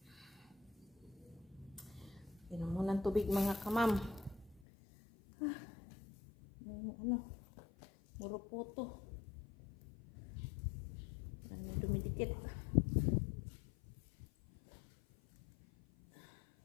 Inom mo ng tubig, mga kamam. Ano? Murupoto. Ano dumidikit.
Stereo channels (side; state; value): right; drops out; at 4.6 s